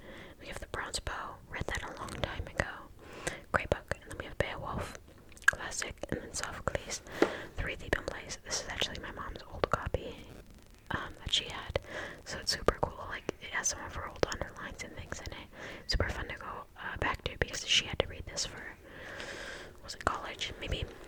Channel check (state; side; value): identical; both; correlation 1.00